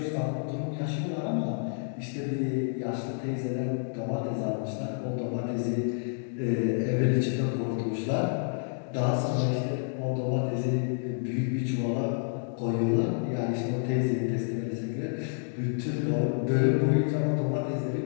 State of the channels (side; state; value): right; silent; digital silence